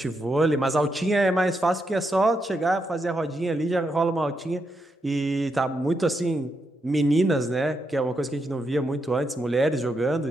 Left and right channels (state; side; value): normal; both; correlation 0.82